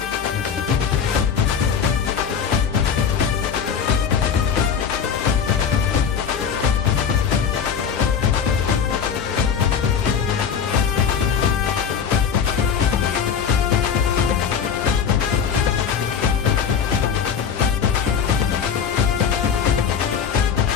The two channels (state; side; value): quieter; right; 7.3 dB